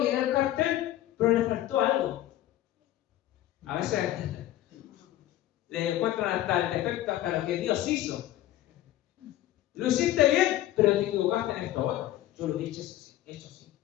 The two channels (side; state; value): right; quieter; 14.0 dB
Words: el cartel, pero le faltó algo. A veces le encuentran hasta el defecto, hasta lo que Dios hizo. Lo hiciste bien, pero te equivocaste en esto otro. Yo lo he hecho así.